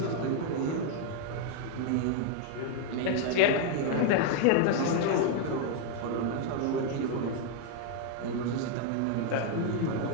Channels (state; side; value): different; both; correlation 0.00